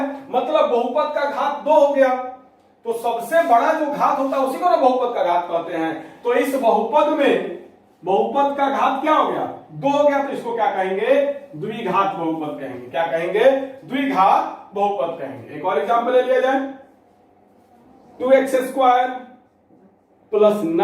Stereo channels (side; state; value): both; identical; correlation 1.00